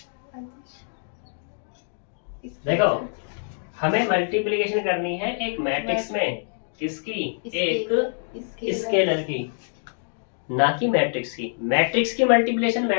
देखो, हमें मल्टीप्लिकेशन करनी है एक मैट्रिक्स में, किसकी? एक स्केलर की, ना कि मैट्रिक्स की। मैट्रिक्स की मल्टीप्लिकेशन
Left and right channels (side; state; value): right; silent; digital silence